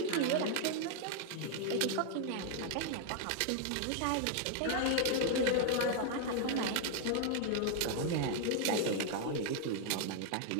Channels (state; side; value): different; both; correlation 0.00